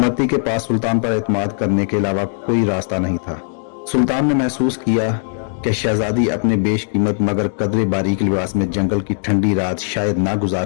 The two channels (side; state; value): right; silent; digital silence